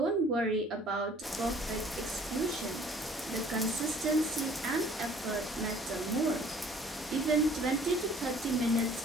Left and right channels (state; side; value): normal; both; correlation 0.54